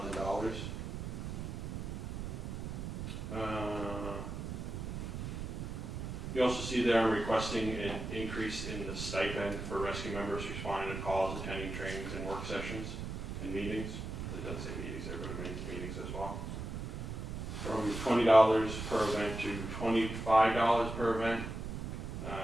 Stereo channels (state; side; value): noise; right; rumble, 5 dB below the sound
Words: You also see there I'm requesting an increase in the stipend for rescue members responding to calls, attending trainings and work sessions and meetings. It doesn't say meetings there, but it means meetings as well. From $20 per event to $25 per event.